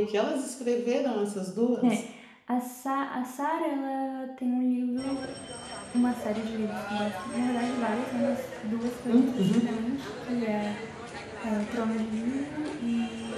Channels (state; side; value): identical; both; correlation 1.00